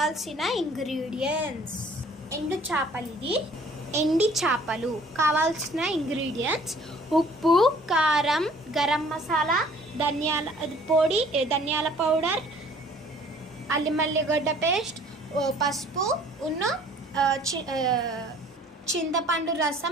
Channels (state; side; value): normal; both; correlation 0.55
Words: ఇంగ్రీడియంట్స్. ఎండు చేపలు, ఇది ఎండి చేపలు. కావాల్సిన ఇంగ్రీడియంట్స్: ఉప్పు, కారం, గరం మసాలా, ధనియాల పొడి, ధనియాల పౌడర్, అల్లిమల్లిగడ్డ పేస్ట్, పసుపు, చింతపండు